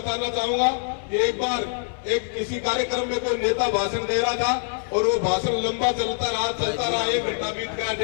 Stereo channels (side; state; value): right; silent; digital silence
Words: चाहूंगा कि एक बार किसी कार्यक्रम में कोई नेता भाषण दे रहा था और वो भाषण लंबा चलता रहा, 1 घंटा बीत गया,